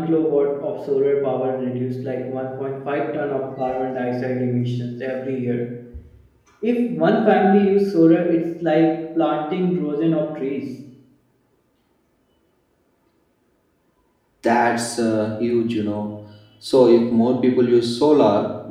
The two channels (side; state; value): both; identical; correlation 1.00